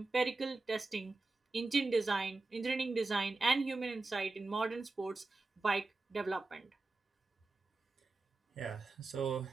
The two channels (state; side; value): quieter; left; 3.4 dB